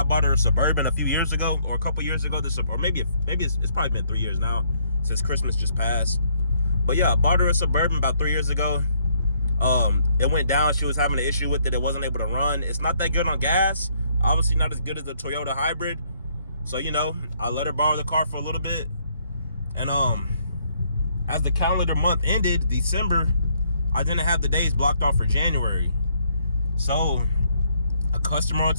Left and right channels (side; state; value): both; inverted; correlation -0.69